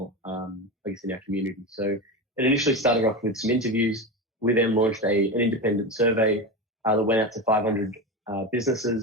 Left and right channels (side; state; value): both; normal; correlation 0.21